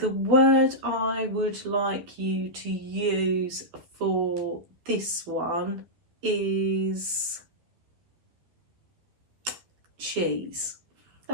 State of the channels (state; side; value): late; left; 12 ms